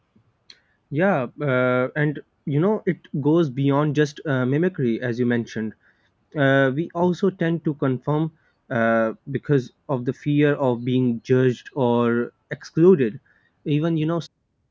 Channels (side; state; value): both; identical; correlation 1.00